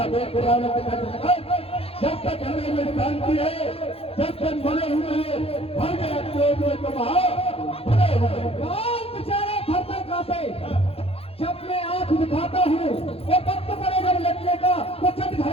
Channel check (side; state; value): right; late; 0.28 ms